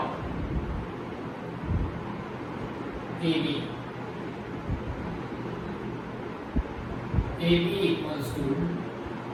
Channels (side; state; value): both; identical; correlation 1.00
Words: AB. AB equals to